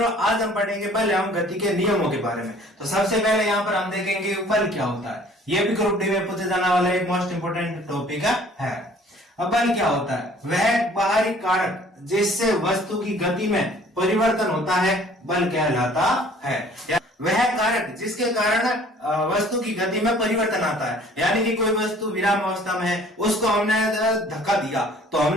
आज हम पढ़ेंगे बल एवं गति के नियमों के बारे में। तो सबसे पहले यहाँ पर हम देखेंगे बल क्या होता है। ये भी ग्रुप डी में पूछे जाने वाला एक मोस्ट इंपोर्टेंट टॉपिक है। अब बल क्या होता है? वह बाहरी कारक जिससे वस्तु की गति में परिवर्तन होता है बल कहलाता है। वह कारक जिसके कारण वस्तु की गति में परिवर्तन आता है, यानी कि कोई वस्तु विराम अवस्था में है, उसको हमने धक्का दिया तो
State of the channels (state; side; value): normal; both; correlation 0.54